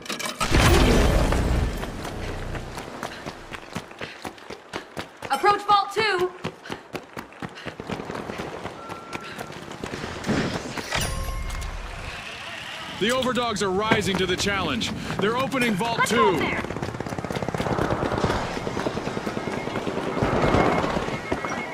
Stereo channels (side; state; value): both; identical; correlation 1.00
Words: Approach vault 2. The Overdogs are rising to the challenge. They're opening Vault Let's 2. go there.